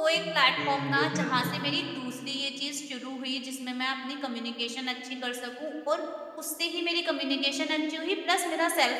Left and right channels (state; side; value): identical; both; correlation 1.00